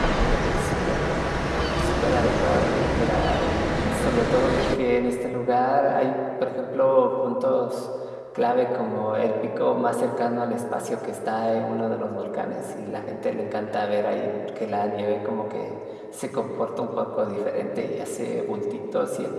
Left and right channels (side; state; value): both; identical; correlation 1.00